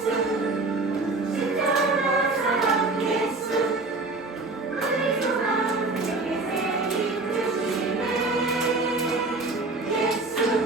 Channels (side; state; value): left; quieter; 3.4 dB